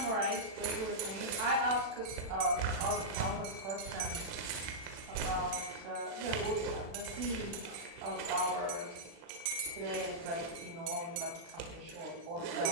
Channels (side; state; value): left; late; 37 ms